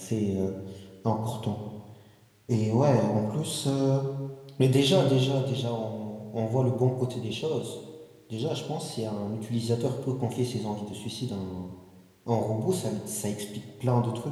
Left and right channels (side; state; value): both; identical; correlation 1.00